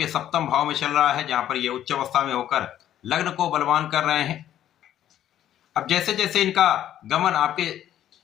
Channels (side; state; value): right; quieter; 11.5 dB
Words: सप्तम भाव में चल रहा है, जहां पर ये उच्च अवस्था में होकर लग्न को बलवान कर रहे हैं। अब जैसे जैसे इनका गमन आपके